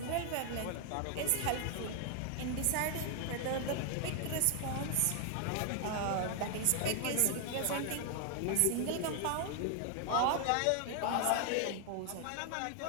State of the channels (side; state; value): both; different; correlation 0.00